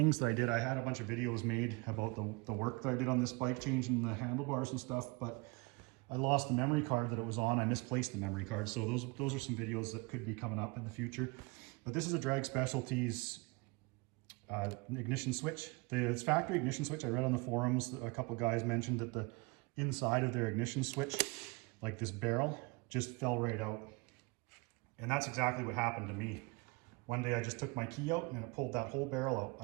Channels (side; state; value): left; quieter; 27.5 dB